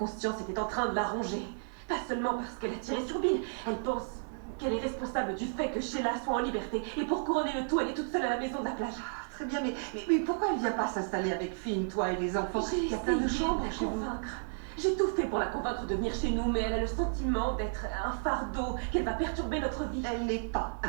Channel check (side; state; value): left; silent; digital silence